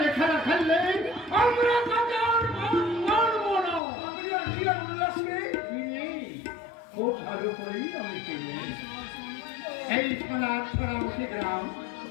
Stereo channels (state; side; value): drops out; right; at 3.8 s